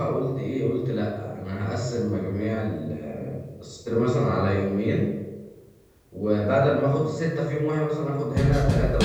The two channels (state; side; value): identical; both; correlation 1.00